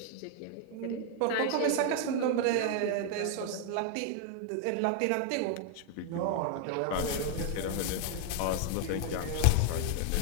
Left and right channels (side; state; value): both; different; correlation 0.00